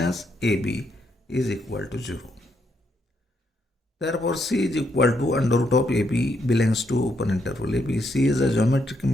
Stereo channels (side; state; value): both; normal; correlation 0.77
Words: ab is equal to 0. Therefore, c is equal to under root of ab belongs to open interval ab. C is a geometric